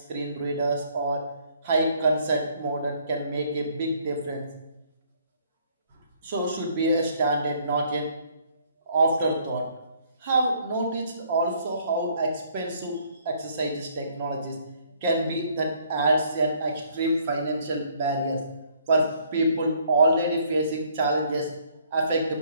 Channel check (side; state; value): both; inverted; correlation -0.64